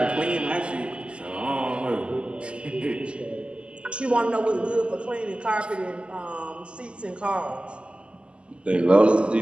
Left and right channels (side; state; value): left; late; 0.053 ms